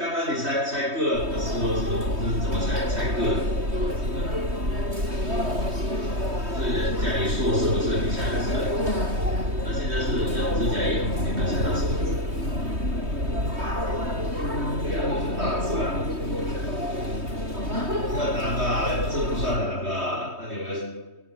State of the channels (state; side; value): late; left; 3.2 ms